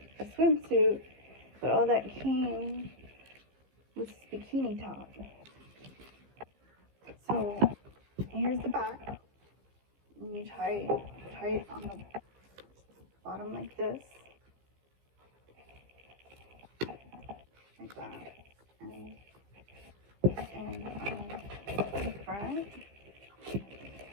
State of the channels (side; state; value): left; late; 15 ms